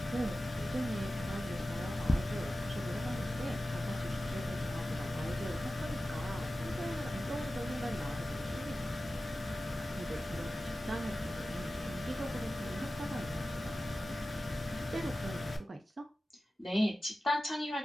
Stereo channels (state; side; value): normal; both; correlation 0.95